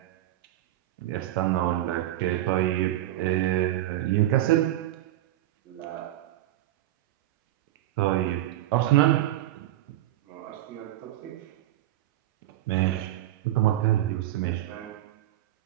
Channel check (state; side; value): quieter; left; 14.5 dB